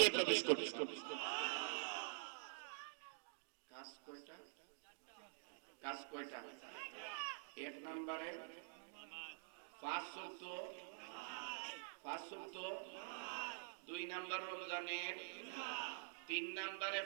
প্রবেশ করবে। কাজ কয়টা? কাজ কয়টা? 1 নম্বরে 5 ওয়াক্ত, 2 নাম্বার রমজানের, 3 নাম্বারে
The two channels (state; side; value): silent; left; digital silence